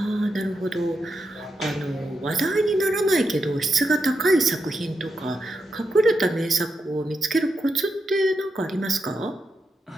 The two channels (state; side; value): normal; both; correlation 0.85